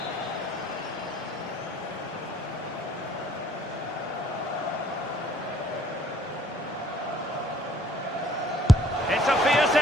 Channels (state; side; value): normal; both; correlation 0.60